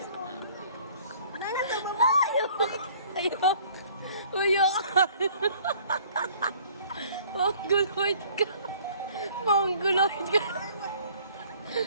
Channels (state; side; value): inverted; both; correlation -0.54